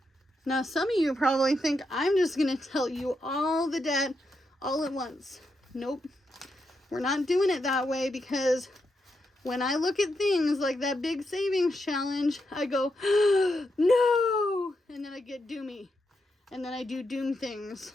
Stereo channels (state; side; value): normal; both; correlation 0.83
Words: Now, some of you probably think I'm just going to tell you all the debt all at once. Nope. We're not doing it that way, because when I look at things like that big savings challenge, I go, no! And then I get doomy. And then I do doom things.